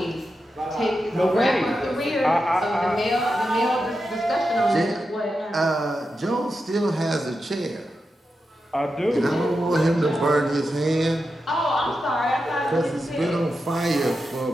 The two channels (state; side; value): normal; both; correlation 0.89